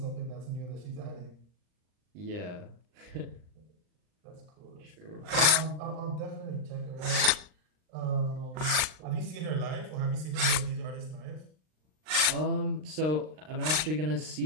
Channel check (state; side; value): late; left; 39 ms